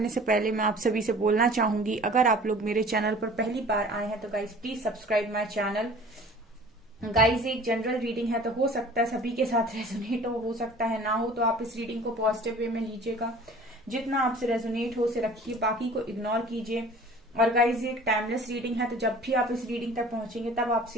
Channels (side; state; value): both; normal; correlation 0.46